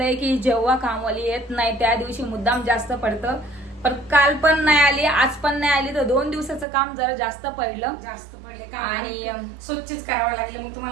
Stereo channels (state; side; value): drops out; left; at 6.7 s